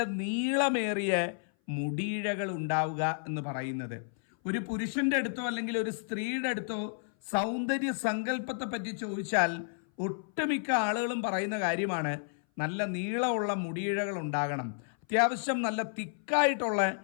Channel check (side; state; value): right; silent; 56 dB below the other